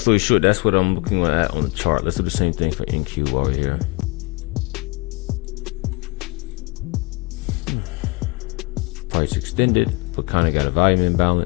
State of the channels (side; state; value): right; quieter; 27.6 dB